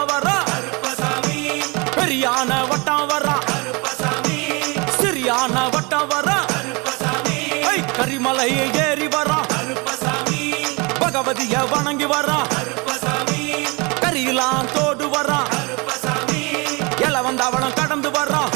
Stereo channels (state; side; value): quieter; left; 28.2 dB